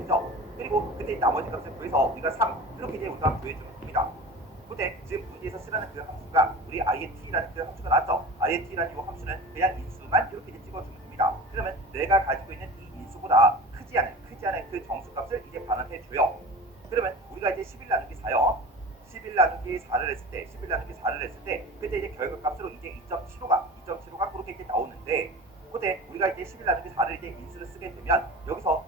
그리고 그때 나머지 값을 구해서 우리가 3 이렇게 이제 우리가 구해주면 됩니다. 근데 지금 문제에서 쓰라는 그 함수가 우리 int라는 그 함수가 나왔죠. int라는 이 함수는 그냥 인수만 이렇게 이제 찍어주면 됩니다. 그러면 내가 가지고 있는 이 인수보다 크지 않은 그 정수값을 이제 반환해 줘요. 그러면 우리가 이제 11 나누기 4요. 11 나누기 4를 했을 때, 11 나누기 4를 했을 때, 그때 이제 결과값으로 이제 2.75가 그렇게 이제 나오는데, 그때 우리가 이제 11 나누기 4를 이제 인수를 쓰게 되면 여기서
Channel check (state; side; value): normal; both; correlation 0.35